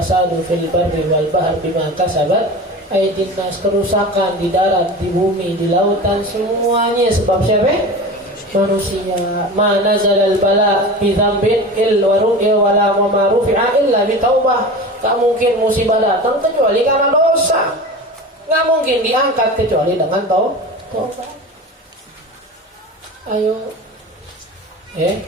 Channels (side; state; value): both; normal; correlation 0.32